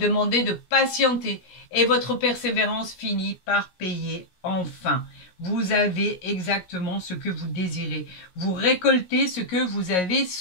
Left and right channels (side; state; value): right; late; 16 ms